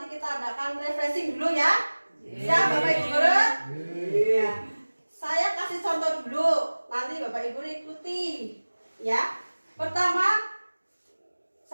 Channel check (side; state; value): both; inverted; correlation -1.00